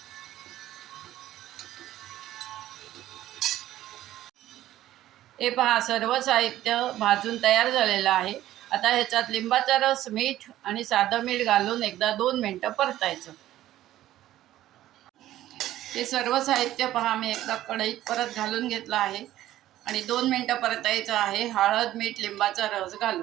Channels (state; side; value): quieter; left; 13.9 dB